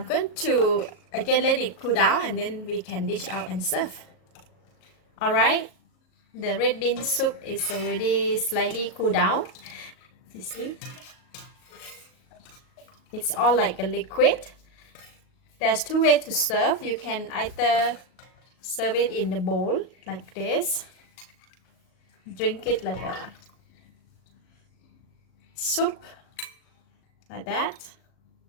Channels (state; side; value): late; right; 38 ms